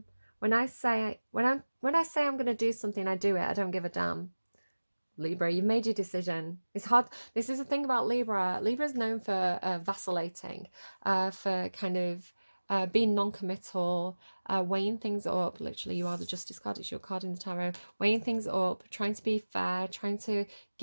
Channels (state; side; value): inverted; both; correlation -1.00